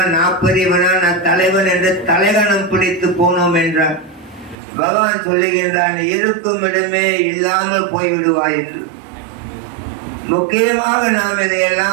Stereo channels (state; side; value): drops out; left; at 4.5 s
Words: நான் பெரியவனா, நான் தலைவன் என்று தலைகணம் பிடித்து போனோம் என்றார். பகவான் சொல்லுகின்றான், இருக்கும் இடமே இல்லாமல் போய்விடுவாய் என்று. முக்கியமாக நாம்